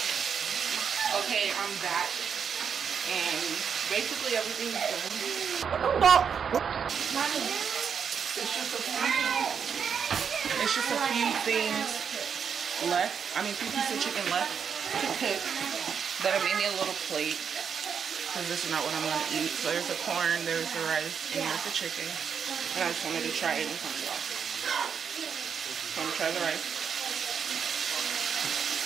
Okay, I'm back and basically everything's done. It's just a few things left. I mean, 2 pieces of chicken left to cook that I made me a little plate. Because this is not what I'm going to eat. So there's the corn, there's the rice, and there's the chicken. And I just wanted to try it in front of y'all. So I'm going to try the rice.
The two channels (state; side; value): quieter; left; 7.0 dB